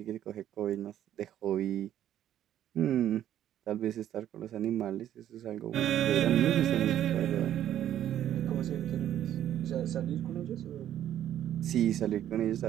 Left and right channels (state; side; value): quieter; left; 11.3 dB